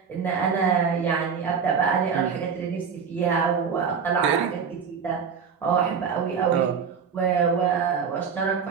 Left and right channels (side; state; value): left; quieter; 6.4 dB